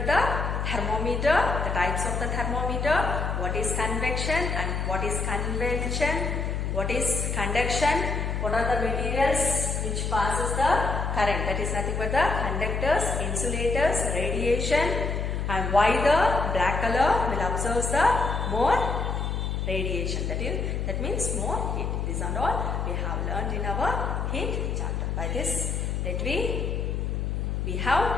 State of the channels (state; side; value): noise; left; hum, 1 dB below the sound